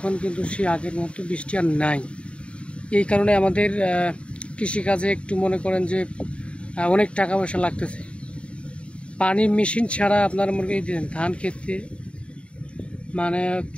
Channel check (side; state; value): right; late; 0.059 ms